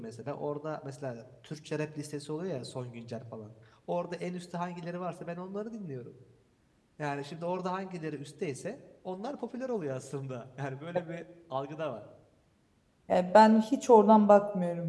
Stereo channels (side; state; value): both; identical; correlation 1.00